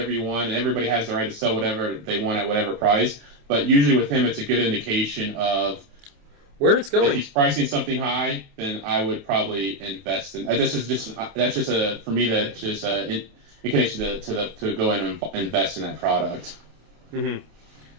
you want, and everybody has the right to sell whatever they want at whatever price. But usually with him, it's a good indication of where it's going. If he's pricing something high, then I would probably invest in. That's just for me, that's just an indication to go in and invest in that product. Mm-hmm.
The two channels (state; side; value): late; left; 28 ms